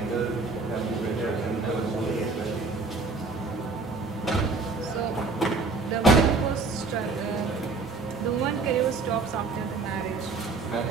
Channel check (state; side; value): quieter; left; 3.8 dB